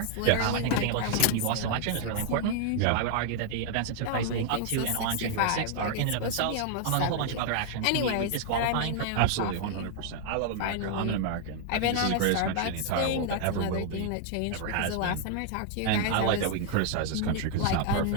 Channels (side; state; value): both; different; correlation 0.00